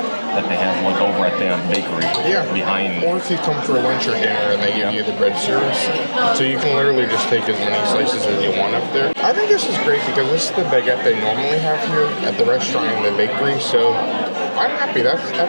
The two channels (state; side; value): inverted; both; correlation -1.00